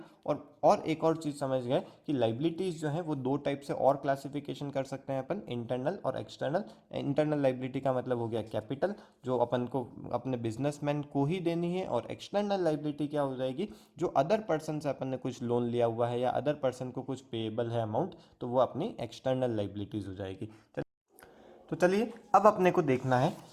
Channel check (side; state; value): both; identical; correlation 1.00